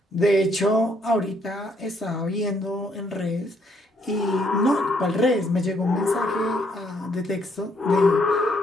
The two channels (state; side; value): normal; both; correlation 0.70